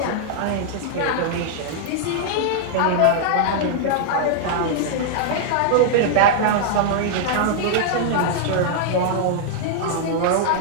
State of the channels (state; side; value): different; both; correlation -0.01